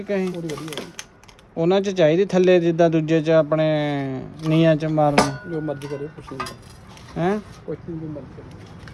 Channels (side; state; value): both; identical; correlation 1.00